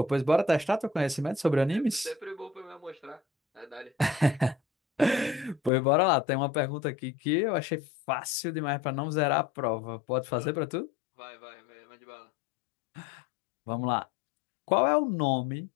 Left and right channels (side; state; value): right; drops out; at 5.7 s